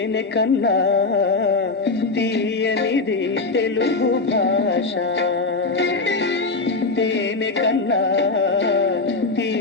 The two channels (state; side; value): quieter; right; 3.8 dB